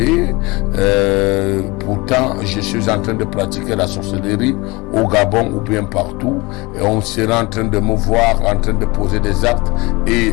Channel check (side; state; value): right; quieter; 24.3 dB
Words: pourtant je suis en train de pratiquer la sorcellerie au Gabon ou bien partout, et on sera en train de me voir en train de poser des actes, et